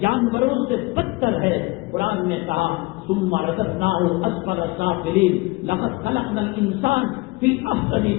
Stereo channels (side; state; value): right; quieter; 23.8 dB